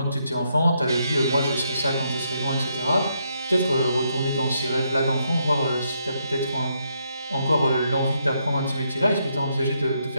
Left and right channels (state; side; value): inverted; both; correlation -0.77